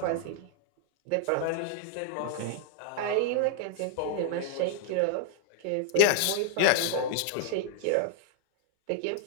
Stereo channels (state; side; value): different; both; correlation -0.01